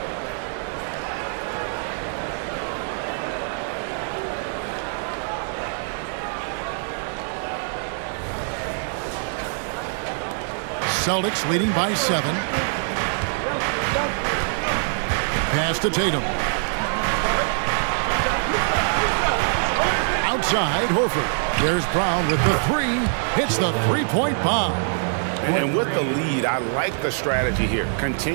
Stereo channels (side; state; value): left; silent; 63 dB below the other